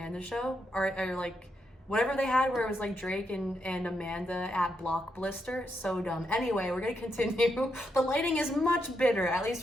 Show, or like whatever they had where it was like Drake and Amanda at Block Blister. So dumb. Anyway, we're gonna continue. The lighting is much better, at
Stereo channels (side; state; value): both; normal; correlation 0.81